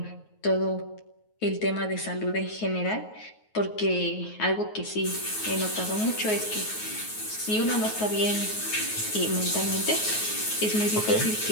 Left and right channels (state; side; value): late; right; 9.4 ms